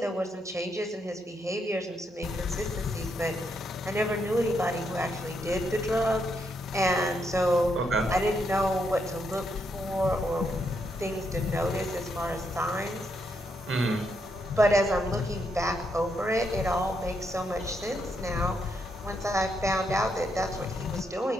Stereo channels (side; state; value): both; normal; correlation 0.79